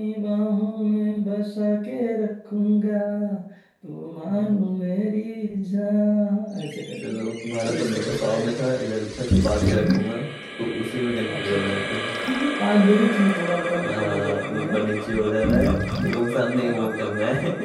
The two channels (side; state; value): both; identical; correlation 1.00